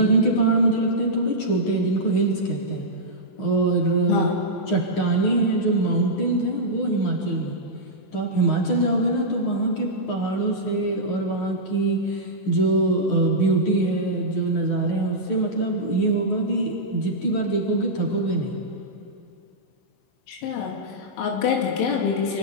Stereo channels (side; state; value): right; late; 16 ms